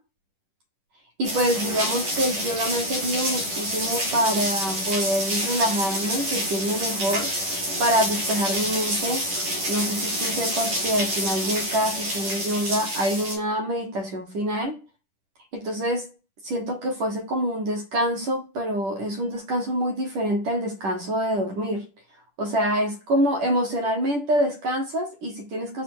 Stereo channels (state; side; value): late; left; 10 ms